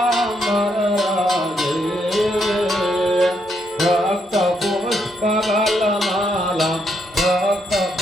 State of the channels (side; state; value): both; normal; correlation 0.77